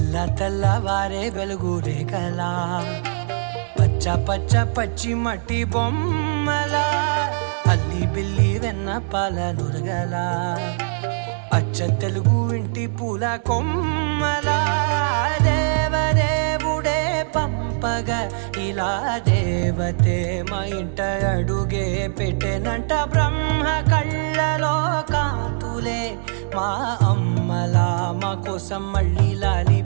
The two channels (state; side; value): silent; left; 64 dB below the other